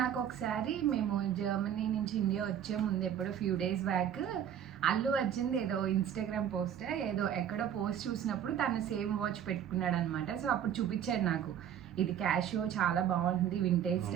నాకు ఒకసారి మేము జర్మనీ నుంచి ఇండియా వచ్చే ముందు ఎప్పుడో few days back Allu Arjun ఏదో ఇన్స్టాగ్రామ్ పోస్ట్ ఏదో ఎక్కడో పోస్ట్ చూసినప్పుడు తను సేమ్ వాచ్ పెట్టుకున్నాడు అనమాట. సో అప్పుడు చూపించాడు నాకు. ఇది క్యాషియో, చాలా బాగుంటుంది, వింటేజ్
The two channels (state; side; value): quieter; left; 9.5 dB